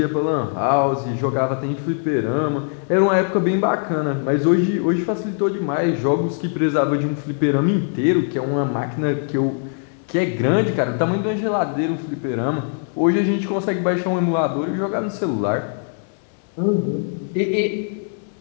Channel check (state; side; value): silent; right; 65 dB below the other